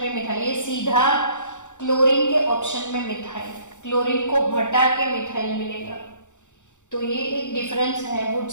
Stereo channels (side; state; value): right; late; 0.85 ms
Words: पे मिथाइल, ये सीधा क्लोरीन के ऑप्शन में मिथाइल, क्लोरीन को हटा के मिथाइल मिलेगा। तो ये एक डिफरेंस है